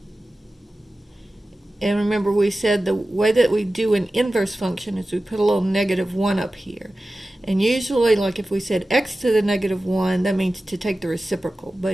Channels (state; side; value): normal; both; correlation 0.95